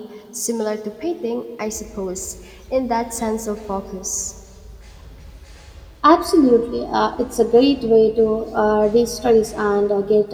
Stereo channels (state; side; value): identical; both; correlation 1.00